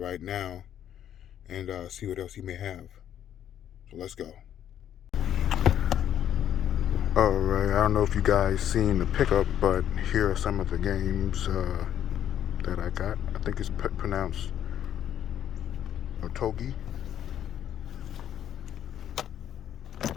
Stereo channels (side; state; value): right; quieter; 10.3 dB